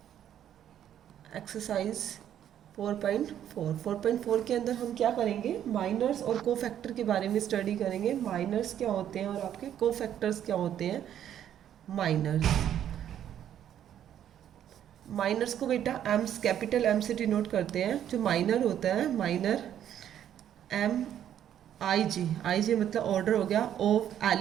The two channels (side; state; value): left; quieter; 10.4 dB